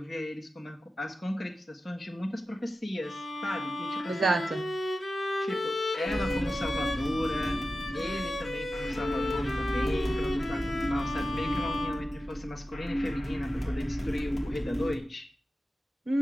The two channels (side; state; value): both; normal; correlation 0.93